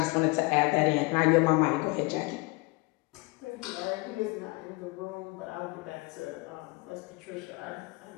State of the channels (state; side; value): quieter; right; 25.2 dB